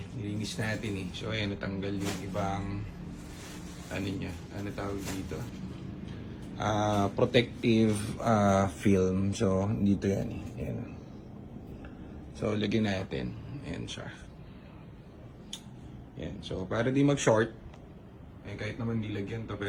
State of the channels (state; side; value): identical; both; correlation 1.00